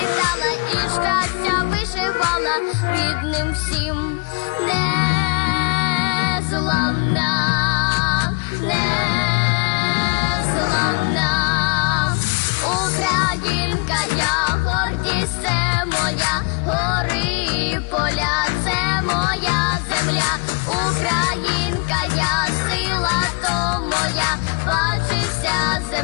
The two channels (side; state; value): right; quieter; 33.8 dB